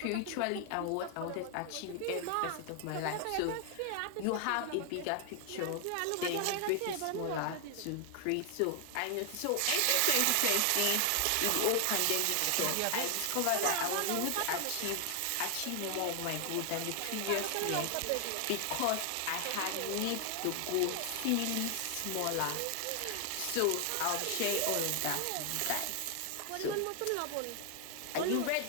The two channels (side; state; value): both; different; correlation 0.00